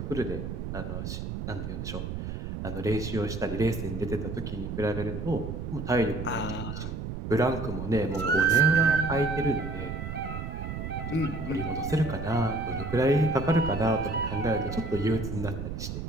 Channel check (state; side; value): noise; right; rumble, 6 dB below the sound